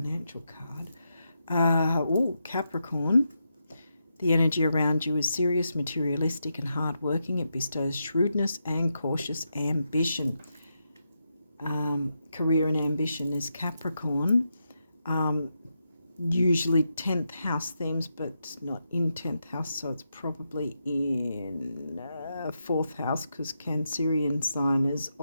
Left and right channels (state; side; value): inverted; both; correlation -0.85